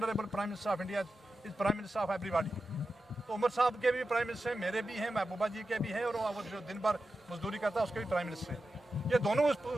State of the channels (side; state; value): both; normal; correlation 0.91